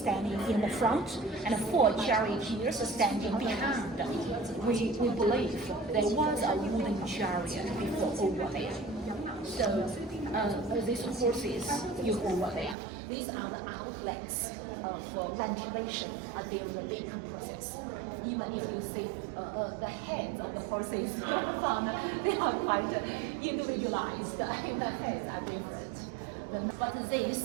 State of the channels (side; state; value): left; drops out; at 12.8 s